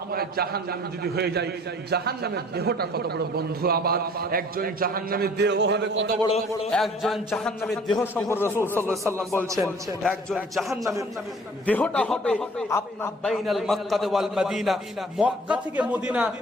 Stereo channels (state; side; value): normal; both; correlation 0.52